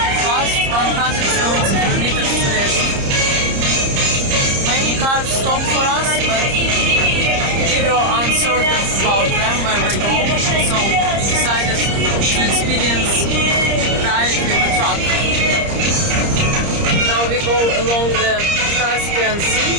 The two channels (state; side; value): late; left; 30 ms